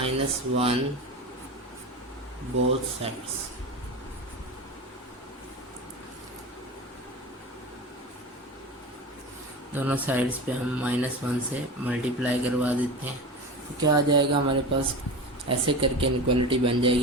both sides. दोनों साइड्स पे हम -1 से मल्टीप्लाई करवा देते हैं तो क्या आ जाएगा हमारे पास, ऐसे करके इनक्वालिटी बन जाएगी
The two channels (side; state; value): both; normal; correlation 0.28